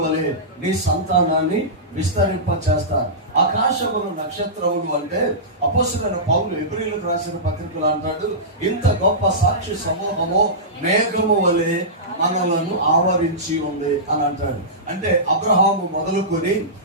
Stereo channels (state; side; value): normal; both; correlation -0.17